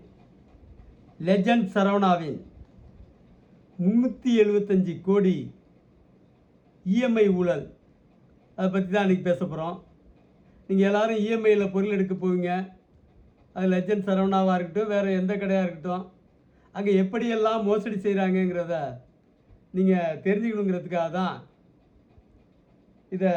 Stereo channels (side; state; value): both; identical; correlation 1.00